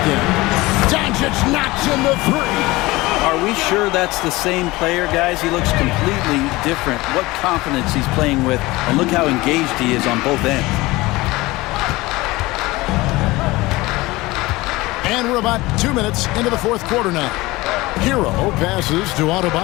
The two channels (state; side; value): quieter; right; 20.6 dB